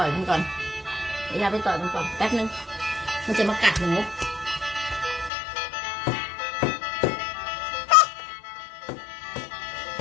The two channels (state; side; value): drops out; right; at 5.3 s